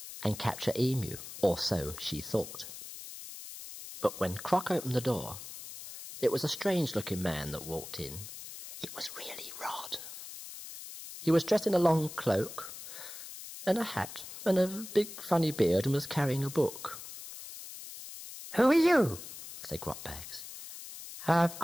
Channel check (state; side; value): noise; left; hiss, 12 dB below the sound